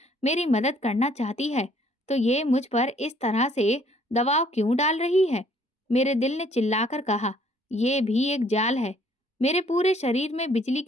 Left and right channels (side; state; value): both; normal; correlation 0.62